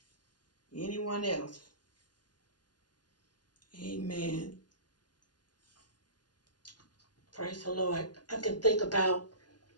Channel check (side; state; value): right; late; 0.70 ms